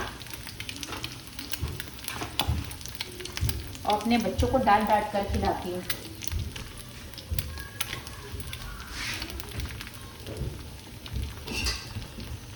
और अपने बच्चों को डांट डांट कर खिलाती हूँ।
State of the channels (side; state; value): both; identical; correlation 1.00